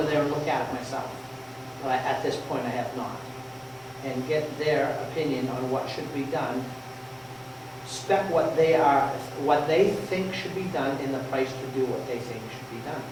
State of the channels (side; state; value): both; identical; correlation 1.00